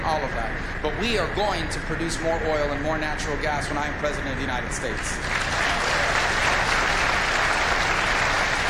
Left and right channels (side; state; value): both; identical; correlation 1.00